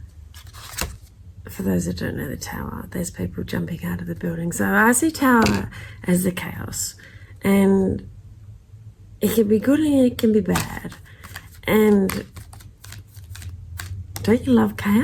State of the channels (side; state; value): both; identical; correlation 1.00